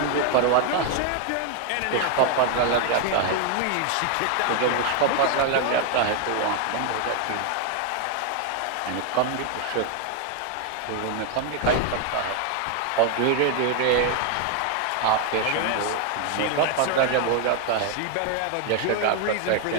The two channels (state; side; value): different; both; correlation 0.01